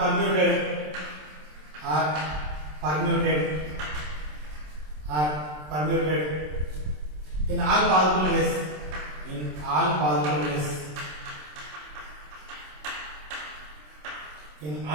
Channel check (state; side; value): late; left; 27 ms